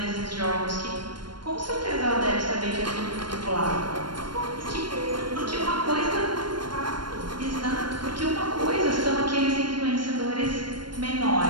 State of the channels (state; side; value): late; left; 0.72 ms